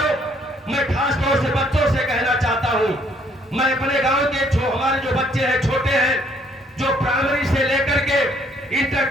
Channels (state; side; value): normal; both; correlation 0.65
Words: मैं खास तौर से बच्चों से कहना चाहता हूं, मैं अपने गांव के हमारे जो बच्चे हैं, छोटे हैं, जो प्राइमरी से लेकर के इंटर